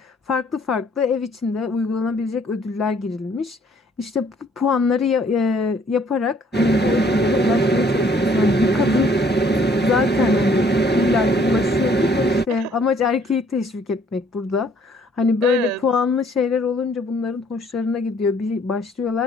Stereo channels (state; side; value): normal; both; correlation 0.61